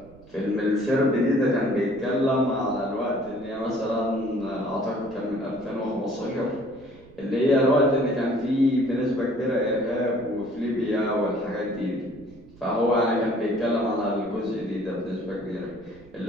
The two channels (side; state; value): right; noise; rumble, 23 dB below the sound